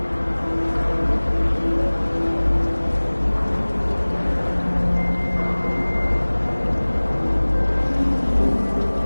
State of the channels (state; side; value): inverted; both; correlation -1.00